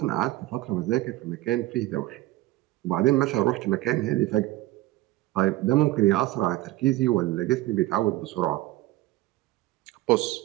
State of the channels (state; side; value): quieter; left; 17.1 dB